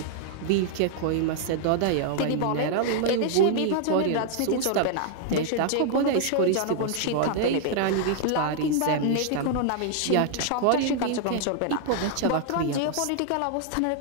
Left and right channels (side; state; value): both; different; correlation 0.00